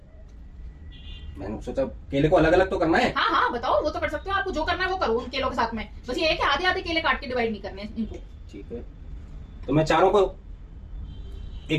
मैंने सोचा केले को अलग अलग तो करना है। हाँ हाँ, बताओ, वो तो कर सकते हो, आपको जो करना है वो करो उन केलों के साथ में। बस ये है कि आधे आधे केले काट के डिवाइड नहीं करने हैं इनको। ठीक है, तो मैं चारों को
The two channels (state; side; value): identical; both; correlation 1.00